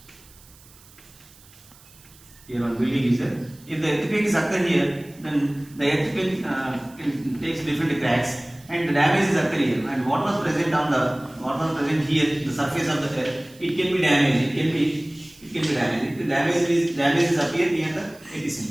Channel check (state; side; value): noise; right; hiss, 25 dB below the sound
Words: is there. If the earthquake is occurring here, then the earthquake takes different cracks, and the damage is occurring here. And what was present here, the surface of the earth, it can be damaged. It can be damaged. If the damage is appear near the